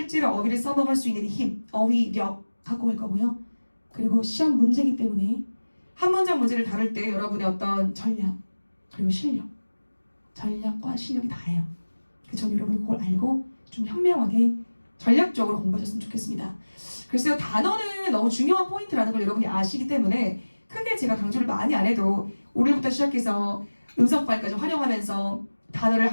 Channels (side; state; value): both; inverted; correlation -1.00